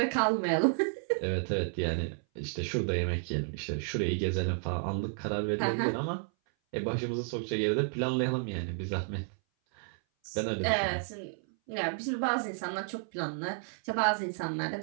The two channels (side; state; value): left; silent; 57 dB below the other